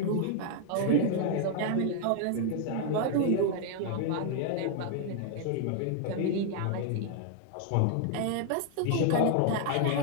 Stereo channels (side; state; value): both; different; correlation 0.00